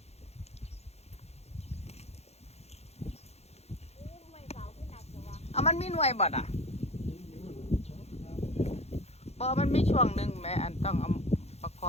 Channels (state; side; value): late; right; 0.31 ms